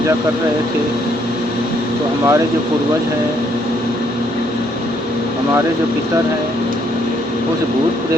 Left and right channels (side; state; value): both; normal; correlation 0.70